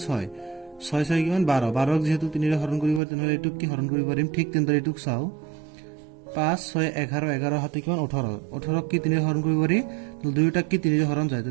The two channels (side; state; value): left; drops out; at 3.0 s